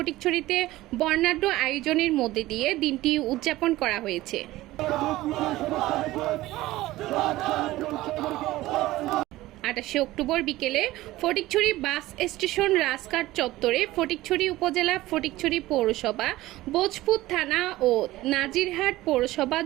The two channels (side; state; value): left; quieter; 17.2 dB